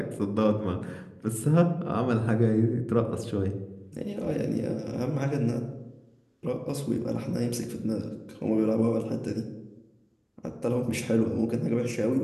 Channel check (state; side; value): identical; both; correlation 1.00